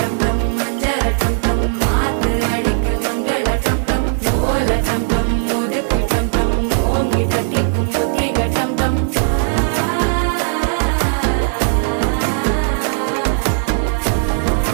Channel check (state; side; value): silent; left; digital silence